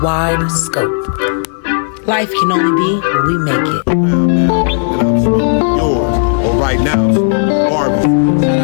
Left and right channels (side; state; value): right; silent; digital silence